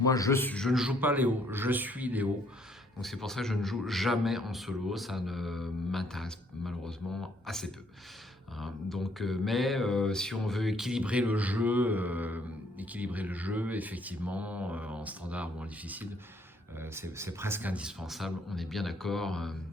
je ne joue pas Léo, je suis Léo. Donc c'est pour ça que je ne joue jamais en solo, ça ne m'intéresse malheureusement assez peu. Hein. Donc, si on veut équilibrer le jeu effectivement, en standard ou en difficile, c'est presque indispensable, on est bien d'accord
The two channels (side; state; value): both; normal; correlation 0.66